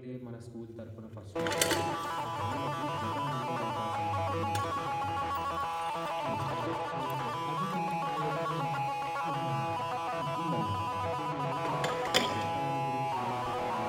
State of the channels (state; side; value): identical; both; correlation 1.00